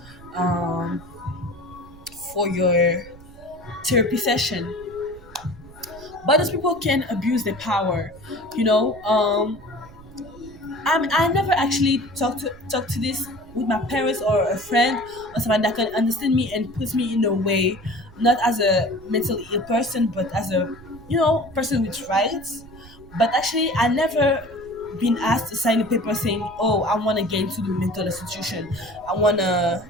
um, for your therapy session. But those people can abuse their power, you know. I never actually talked to this with my parents or a friend or someone that can understand me and put me in a way, not as a mentally ill person, but as a, you know, person with rights. But actually, I never been asked to sign a paper saying, "Oh, I want to get into the mental institution. I want to."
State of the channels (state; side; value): noise; right; rumble, 21 dB below the sound